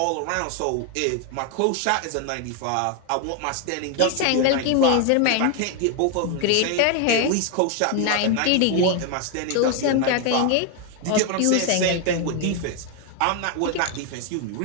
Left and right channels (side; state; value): both; different; correlation 0.01